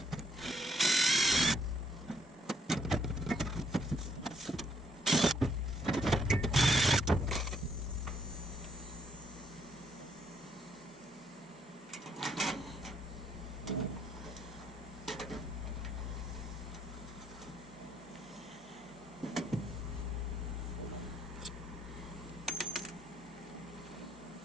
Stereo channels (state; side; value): normal; both; correlation 0.69